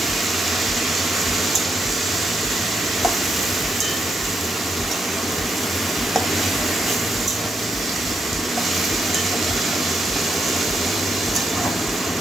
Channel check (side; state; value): both; normal; correlation 0.79